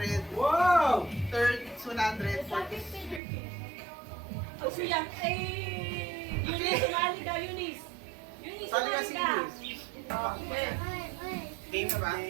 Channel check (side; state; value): left; drops out; at 3.2 s